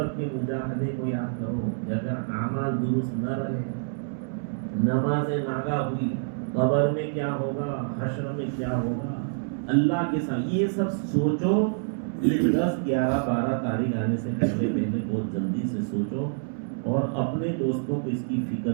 کے مجاہدے کو یاد کرو۔ اگر اعمال درست نہ رہے، نماز ناگا ہوئی، قبر میں کیا ہوگا، حشر میں کیا ہوگا، اللہ کے ساتھ یہ سب سوچو۔ یہ 10 11 12 تاریخ آنے سے پہلے بہت جلدی سے سوچو اور اپنے دوستوں کو اس کی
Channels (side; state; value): left; silent; 60 dB below the other